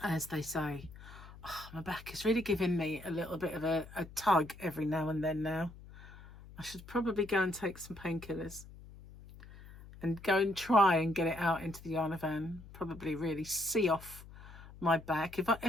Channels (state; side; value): noise; left; hum, 17 dB below the sound